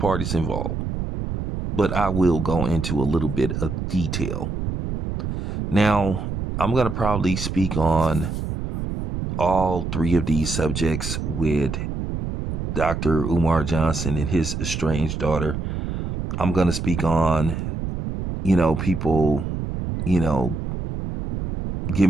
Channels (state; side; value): noise; right; rumble, 4 dB below the sound